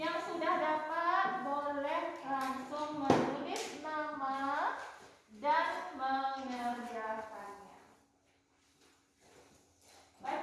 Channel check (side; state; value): both; identical; correlation 1.00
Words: sudah dapat boleh langsung menulis nama dan mengerjakannya.